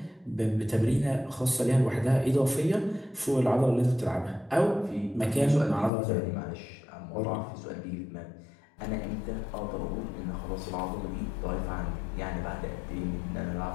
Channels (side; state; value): right; drops out; at 5.9 s